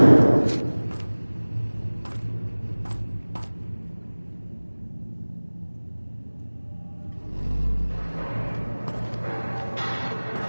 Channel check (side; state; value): both; inverted; correlation -1.00